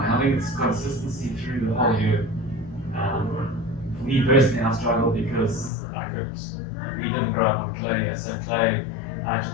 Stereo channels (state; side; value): drops out; right; at 5.7 s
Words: think it's consistency through the whole year. For me personally, I struggled because we didn't grow up on clay, so clay, I had to